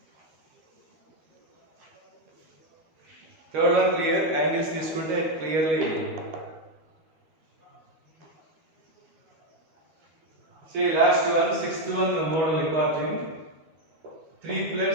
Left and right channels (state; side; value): late; left; 12 ms